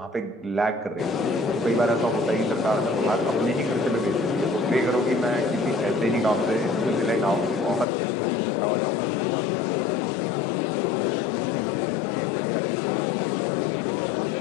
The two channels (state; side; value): drops out; right; at 7.9 s